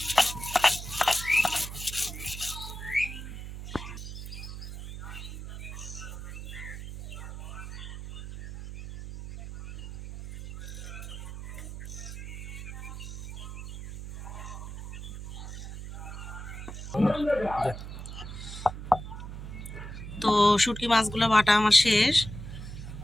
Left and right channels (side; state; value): right; noise; hum, 9 dB below the sound